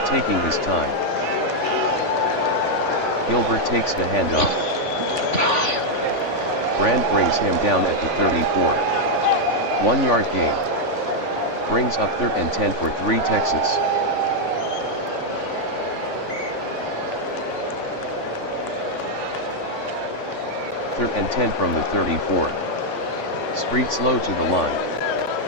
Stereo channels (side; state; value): right; late; 3.5 ms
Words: taking his time. Gilbert takes the handoff. Brand brings him down at the 34. 1 yard gain. Brings up 3rd and 10 for 3 Texas. Third and 10 from the 34. Street slow to the line.